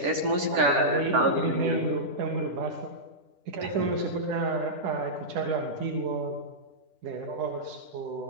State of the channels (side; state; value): left; late; 10 ms